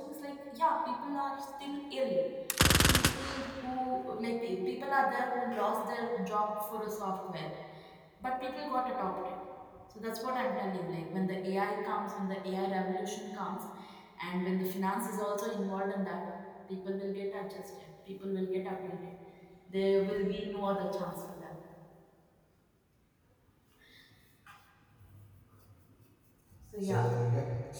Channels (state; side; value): identical; both; correlation 1.00